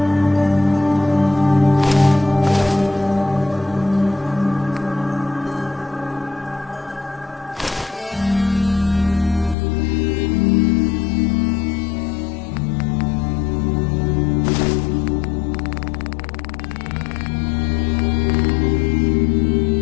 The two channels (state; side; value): drops out; right; at 9.6 s